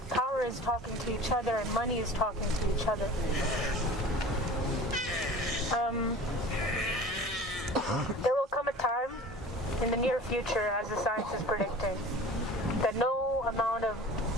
power is talking to each other and money is talking to each other. There will come a time in the near future, as the science is predicting, that no amount of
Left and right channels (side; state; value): both; normal; correlation 0.40